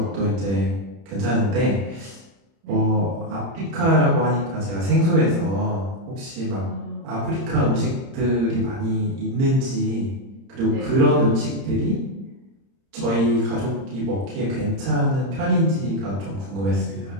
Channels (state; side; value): late; left; 30 ms